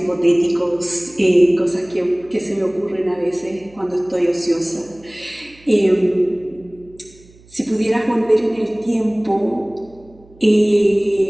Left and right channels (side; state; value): right; noise; hum, 26 dB below the sound